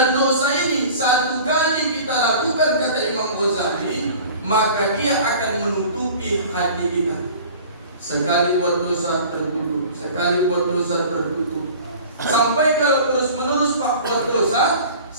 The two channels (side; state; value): both; inverted; correlation -0.43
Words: dosa ini satu kali kita lakukan, kata Imam Ghazali, maka dia akan menutupi hati kita. Sekali buat dosa tertutup, sekali buat dosa tertutup. Sampai kalau terus-menerus Pak buat dosa,